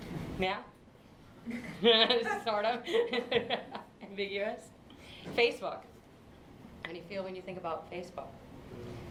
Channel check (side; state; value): both; identical; correlation 1.00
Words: Yeah? Sort of. Ambiguous. Facebook. How do you feel when you think about Facebook?